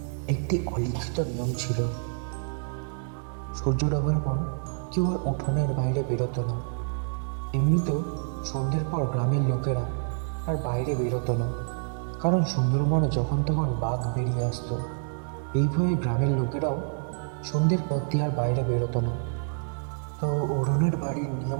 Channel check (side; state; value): left; silent; digital silence